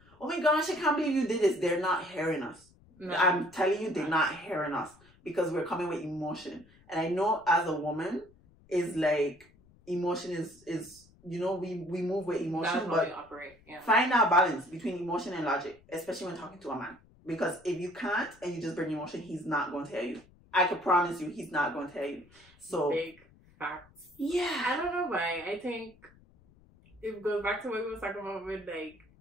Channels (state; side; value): noise; left; rumble, 28 dB below the sound